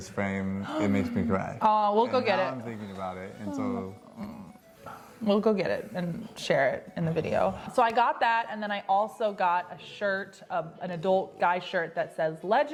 frame, it makes me cry. Oh, we'll go get it. I'm thinking about it, and so. We'll go get it and share it in the video. So I got that, and then I also got a shirt, an adult guy shirt that says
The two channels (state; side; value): identical; both; correlation 1.00